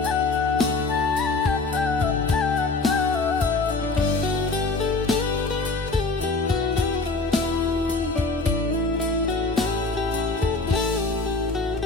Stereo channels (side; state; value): right; quieter; 3.5 dB